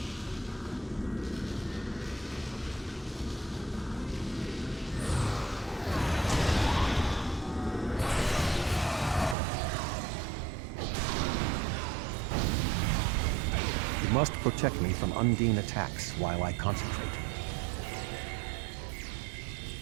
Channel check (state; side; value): drops out; left; at 9.3 s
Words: You must protect me from Undine attacks while I concentrate.